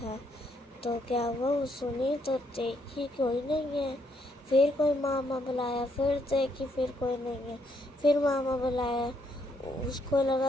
तो क्या हुआ, वो सुनी तो देखी कोई नहीं है। फिर कोई मामा बुलाया, फिर देखी फिर कोई नहीं है। फिर मामा बुलाया, उसको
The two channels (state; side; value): normal; both; correlation 0.73